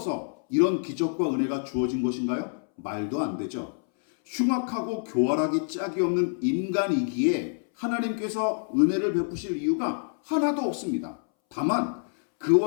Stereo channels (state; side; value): silent; right; 60 dB below the other